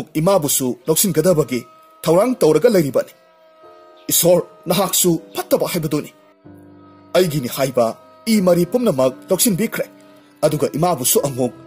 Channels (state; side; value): identical; both; correlation 1.00